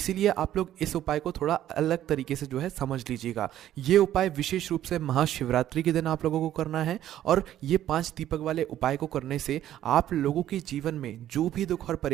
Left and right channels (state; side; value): quieter; left; 12.2 dB